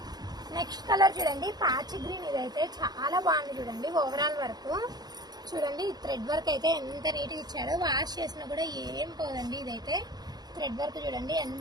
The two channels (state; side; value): late; left; 0.19 ms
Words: నెక్స్ట్ కలర్ చూడండి పాచి గ్రీన్. ఇదైతే చాలా బాగుంది చూడండి ఓవరాల్ వర్క్. చూడండి థ్రెడ్ వర్క్ అయితే ఎంత నీట్గా ఇచ్చాడో. వాష్ చేసినా కూడా ఏం పోదండి. ఇదైతే థ్రెడ్ వర్క్ చూడండి